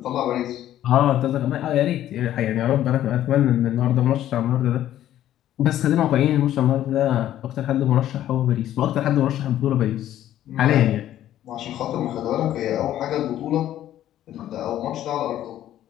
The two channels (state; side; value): quieter; right; 12.3 dB